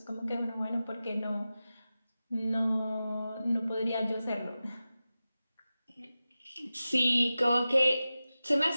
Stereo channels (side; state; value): both; inverted; correlation -0.94